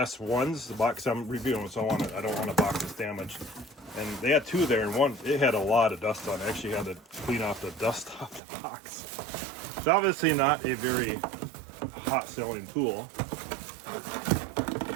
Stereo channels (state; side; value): drops out; left; at 8.4 s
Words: ones, the box I'm reviewing, so I don't want a box that's damaged. And they had 2 there, and one, it had a lot of dust on it. I actually had to clean off the dust off the box. It's obviously not a very hot selling tool. All